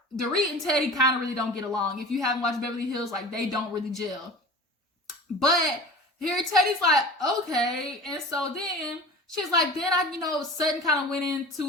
Dorit and Teddy kind of really don't get along. If you haven't watched Beverly Hills, like, they don't really gel. But here, Teddy's like, okay, and so then she's like, then Sutton kind of went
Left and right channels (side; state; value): both; normal; correlation 0.38